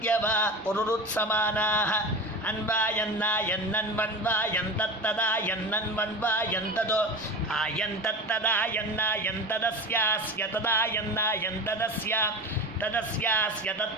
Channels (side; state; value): both; normal; correlation 0.29